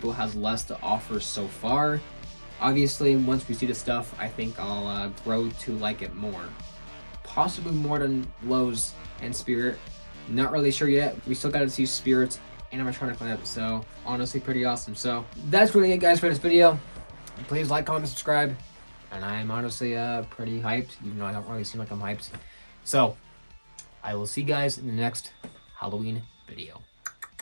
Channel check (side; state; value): both; inverted; correlation -1.00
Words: has less to offer so far. Obviously, once we see the stuff, I think I'll grow to like it more. Possibly more than Lowe's and Spirit, Not really sure yet. We still gotta see spirits animatronic lineup, so honestly pretty awesome. So that's really it, guys, for this video. Please like, comment, subscribe, and I'm honestly pretty hyped, even though I don't really seem like I'm hyped. So I will see you guys in the next Halloween video.